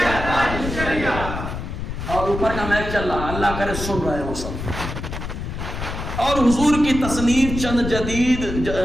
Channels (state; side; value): noise; left; rumble, 6 dB below the sound